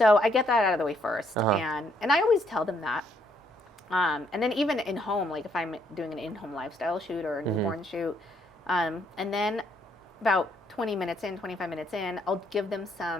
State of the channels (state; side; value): normal; both; correlation 0.70